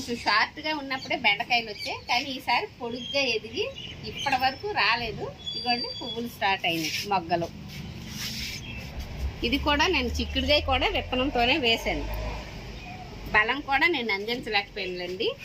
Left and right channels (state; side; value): identical; both; correlation 1.00